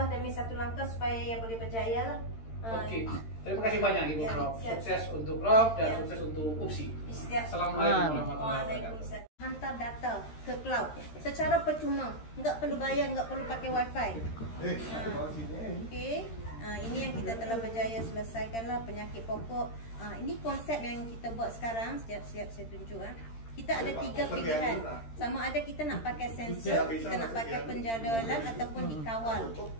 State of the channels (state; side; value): late; right; 13 ms